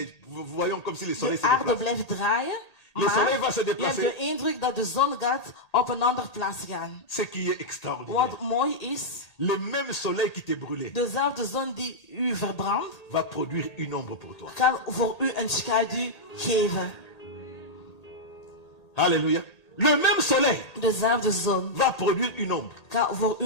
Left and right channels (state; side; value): late; right; 1.8 ms